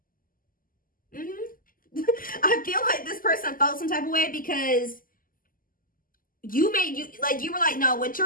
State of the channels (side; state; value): right; late; 0.41 ms